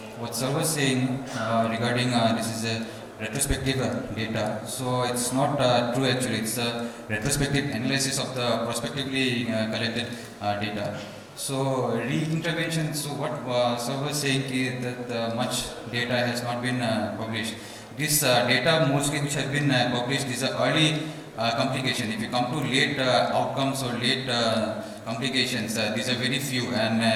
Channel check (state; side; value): identical; both; correlation 1.00